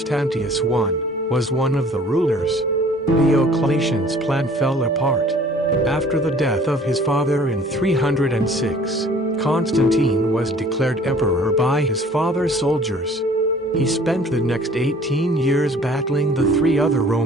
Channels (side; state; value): both; normal; correlation 0.52